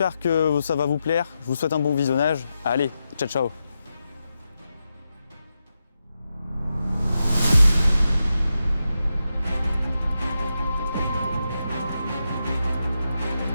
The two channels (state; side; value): inverted; both; correlation -0.88